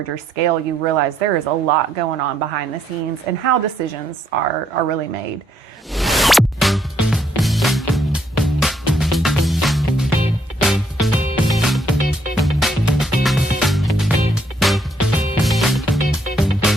scale, you realize there is a lot going on behind the scenes and how decisions are really made.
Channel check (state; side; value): normal; both; correlation 0.71